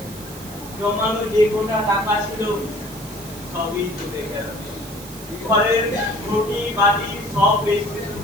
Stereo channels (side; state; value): right; noise; hiss, 15 dB below the sound